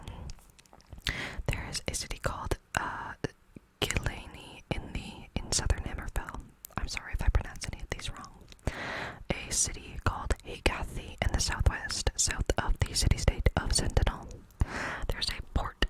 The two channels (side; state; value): both; identical; correlation 1.00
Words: There is a city called Gilani in southern Hammerfell. I'm sorry if I pronounce any of these wrong. A city called Hagathi in the southwest, south of the city-state of Sentinel. There's a port